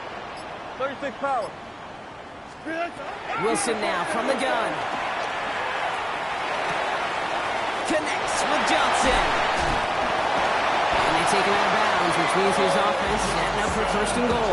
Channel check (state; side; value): identical; both; correlation 1.00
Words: Power. Wilson now from the gun. Connects with Johnson. And they take him out of bounds, which means his offense setting up for 1st and